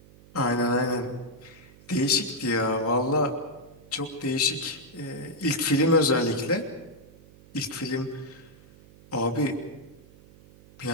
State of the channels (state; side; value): noise; right; hum, 23 dB below the sound